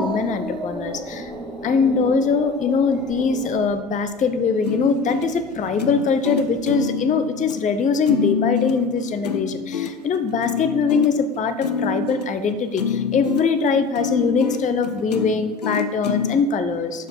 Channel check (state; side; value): quieter; right; 4.7 dB